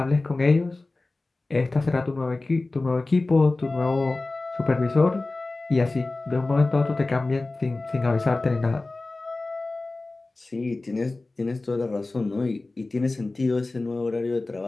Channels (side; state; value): right; quieter; 3.2 dB